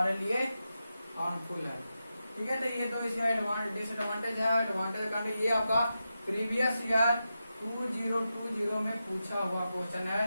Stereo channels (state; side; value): inverted; both; correlation -0.89